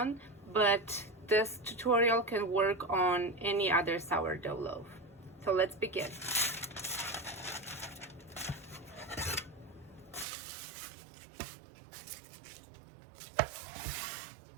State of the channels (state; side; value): drops out; left; at 10.2 s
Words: but this tutorial can work on any other sourdough loaf. So let's begin.